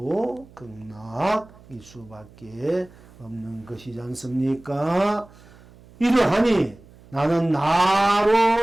극락일 수밖에 없는 것이지 않습니까? 이러하니 나는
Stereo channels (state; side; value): noise; right; hum, 24 dB below the sound